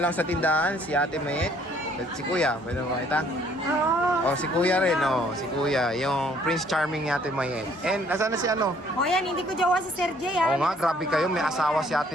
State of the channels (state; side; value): normal; both; correlation 0.61